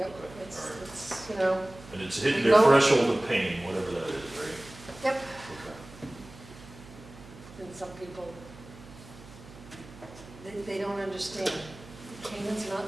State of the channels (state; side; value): noise; right; hum, 18 dB below the sound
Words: Okay, it's, all right. it's, and it's hitting We their go- threshold of pain, whatever that is, right? Yep. Okay. and some people, they don't understand. Canaan's